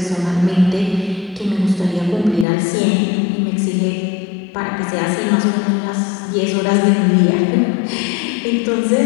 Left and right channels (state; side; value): drops out; right; at 2.5 s